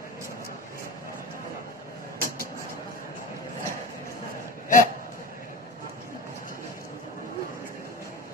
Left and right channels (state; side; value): normal; both; correlation 0.31